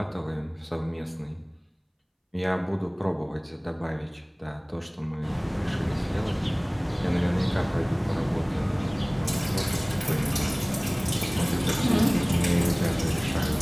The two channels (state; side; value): identical; both; correlation 1.00